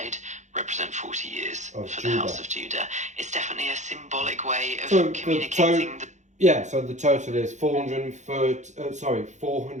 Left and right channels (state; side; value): late; left; 0.34 ms